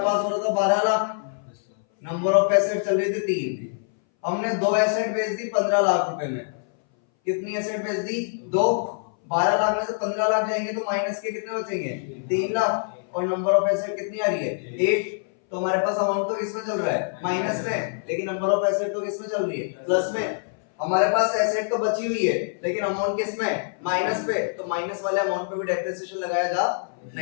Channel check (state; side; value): silent; right; 60 dB below the other